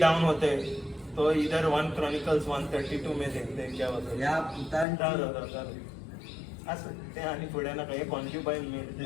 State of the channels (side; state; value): right; drops out; at 4.9 s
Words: होते। तो इधर 1 Chronicles 1:32 में देखते हैं क्या होता है। या पुतांची असं ते आणि पुढे ना काही कॉन्क्युबाईन मेन,